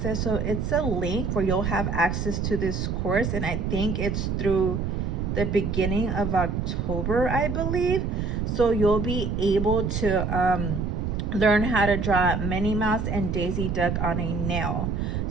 so it's a link where you'll have access to this course, and I think it's through the beginning of October, I believe. So you'll be able to learn how to draw Minnie Mouse and Daisy Duck on a nail.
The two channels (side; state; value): right; noise; rumble, 1 dB below the sound